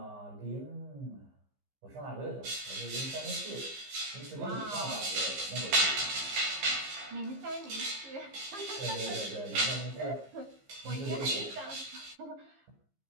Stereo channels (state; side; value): late; left; 15 ms